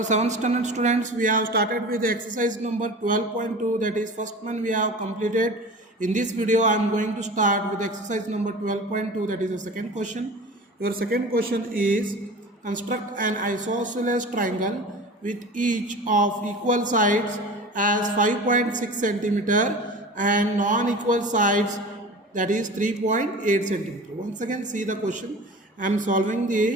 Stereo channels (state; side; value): normal; both; correlation 0.36